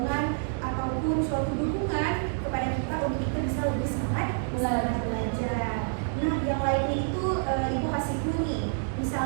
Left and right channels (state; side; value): silent; left; digital silence